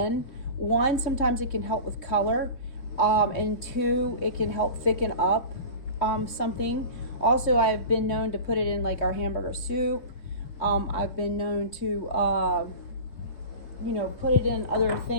1, sometimes it can help with color, and 2, it can help thicken up something. Also, I've been known to put it in like our hamburger soup. I've been known to, you know, put it in other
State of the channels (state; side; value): late; right; 3.6 ms